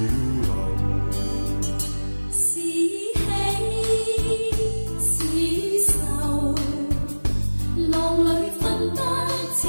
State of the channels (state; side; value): inverted; both; correlation -1.00